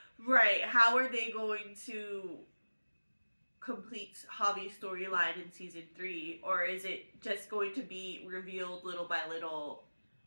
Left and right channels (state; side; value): inverted; both; correlation -1.00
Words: Right. How are they going to complete Javi's storyline in season 3? Or is it just going to be revealed little by little